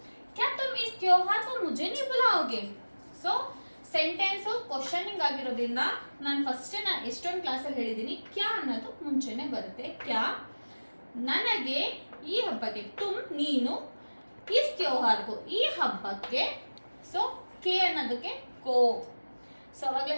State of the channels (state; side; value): inverted; both; correlation -1.00